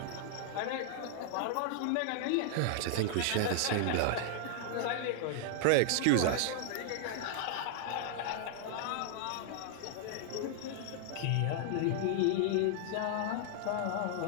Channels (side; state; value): both; different; correlation -0.01